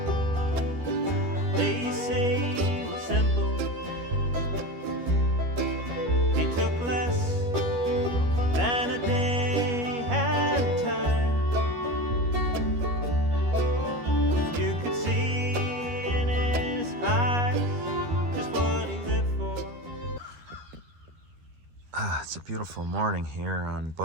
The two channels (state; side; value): late; left; 13 ms